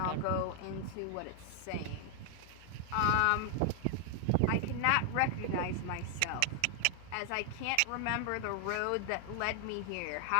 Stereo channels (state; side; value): different; both; correlation 0.00